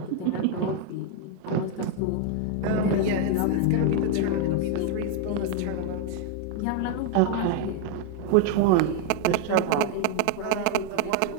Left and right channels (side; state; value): both; different; correlation 0.01